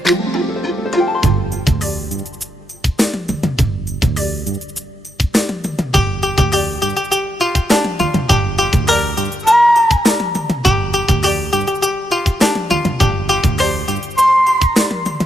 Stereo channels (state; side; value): normal; both; correlation 0.82